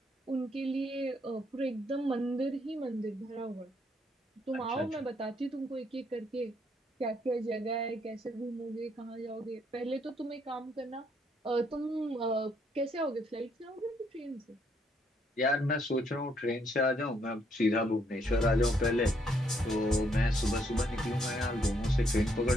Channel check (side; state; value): both; normal; correlation 0.71